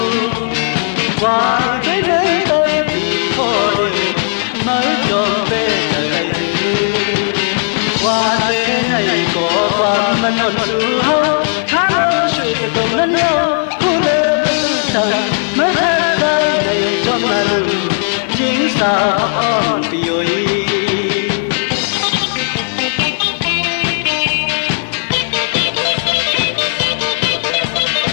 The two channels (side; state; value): right; silent; digital silence